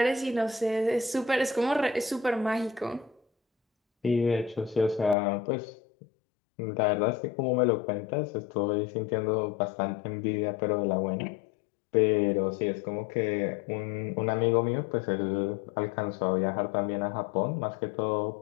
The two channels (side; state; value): right; drops out; at 5.2 s